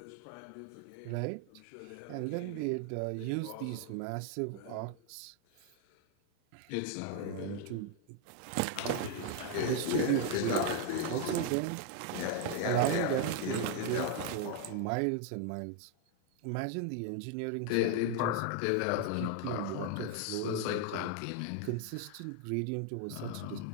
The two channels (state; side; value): different; both; correlation 0.00